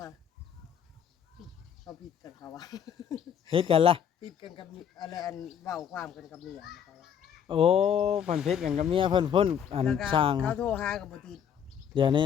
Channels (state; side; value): quieter; right; 8.4 dB